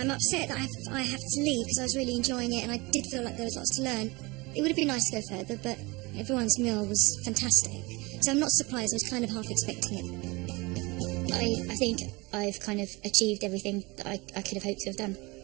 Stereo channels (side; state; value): left; quieter; 24.6 dB